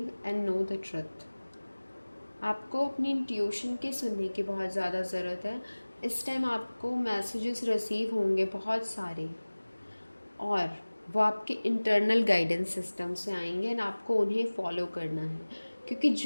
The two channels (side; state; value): both; inverted; correlation -1.00